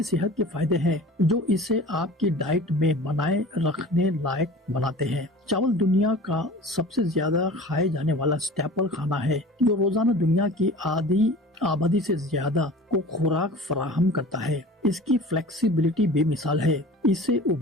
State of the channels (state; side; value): normal; both; correlation 0.40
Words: सेहत के फायदे हैं जो इसे आपकी डाइट में बनाए रखने लायक बनाते हैं। चावल दुनिया का सबसे ज्यादा खाए जाने वाला स्टेपल खाना है, जो रोजाना दुनिया की आधी आबादी से ज्यादा को खुराक फराहम करता है। इसकी फ्लेक्सिबिलिटी बेमिसाल है। इसे